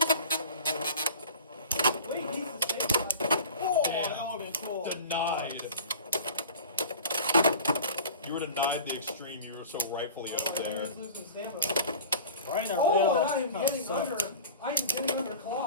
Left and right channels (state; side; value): inverted; both; correlation -0.38